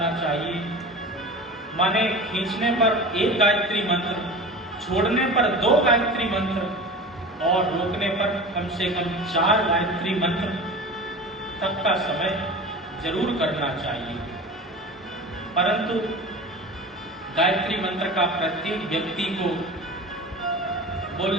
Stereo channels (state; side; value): normal; both; correlation 0.34